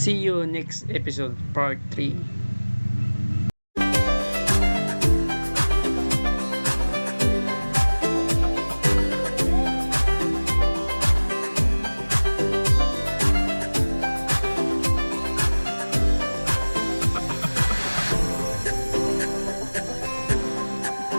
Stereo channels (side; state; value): both; inverted; correlation -1.00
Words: you next episode, part 3.